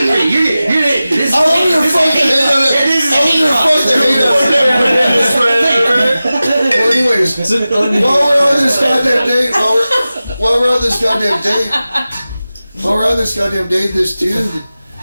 This I want her to fuck the hate on it. I want her to fuck the hate on it. Well, anyways, while we're on this goddamn date, while we're on this goddamn date, this dude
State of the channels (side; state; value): both; inverted; correlation -0.95